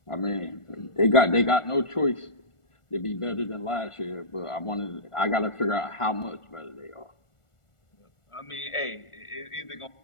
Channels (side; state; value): right; late; 1.4 ms